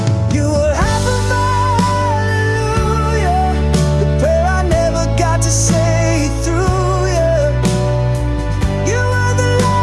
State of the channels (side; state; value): both; identical; correlation 1.00